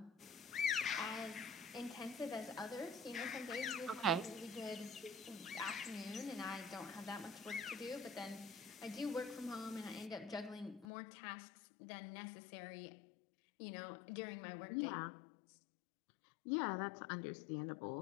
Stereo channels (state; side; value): drops out; right; at 10.9 s